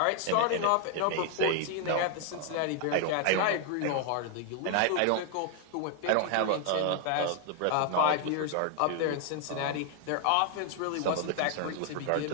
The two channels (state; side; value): different; both; correlation 0.00